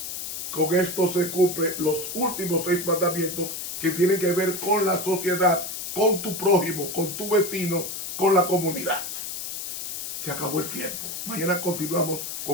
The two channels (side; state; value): left; noise; hiss, 6 dB below the sound